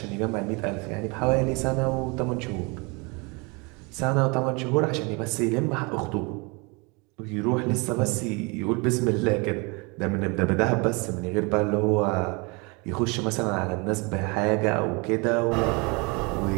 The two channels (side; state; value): left; quieter; 29.4 dB